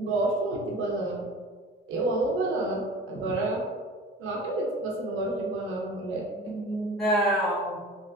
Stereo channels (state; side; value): normal; both; correlation 0.39